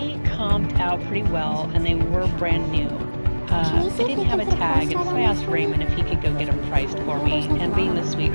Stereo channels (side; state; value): both; inverted; correlation -1.00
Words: comped out pretty well, and they were brand new. Can you see They if didn't you have a can put a tag, price and tag so on I asked this? Raymond if he could go get them priced for me, and being the